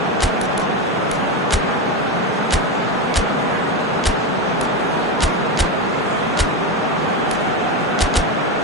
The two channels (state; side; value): normal; both; correlation 0.15